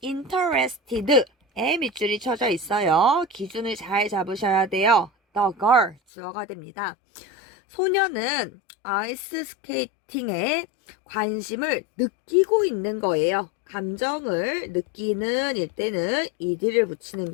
interested에 밑줄이 쳐져 있어요. 기준을 잘 잡으셔야 돼요. the girl 주어가 됩니다. 소녀는 아이스 스케이팅에 관심을 느끼고 있는 거예요. 감정을 느끼는 일 때는 ed를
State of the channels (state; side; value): drops out; right; at 6.0 s